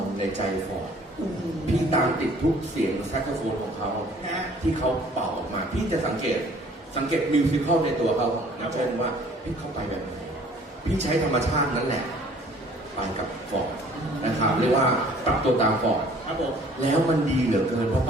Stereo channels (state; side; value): normal; both; correlation 0.54